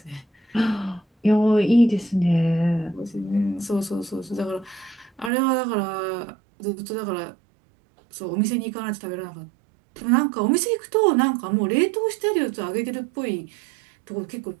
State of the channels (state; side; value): drops out; left; at 5.3 s